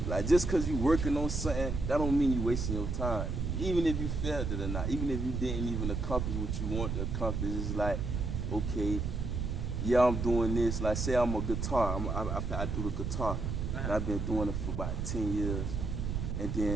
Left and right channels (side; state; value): right; noise; rumble, 2 dB below the sound